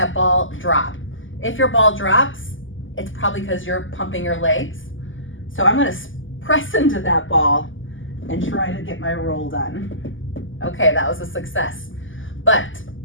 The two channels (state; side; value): late; right; 0.57 ms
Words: ball drop. If your ball drops, it's probably because you're pumping your legs. So I'm gonna press into that ball and try to get my roll done. Okay, that was a success. But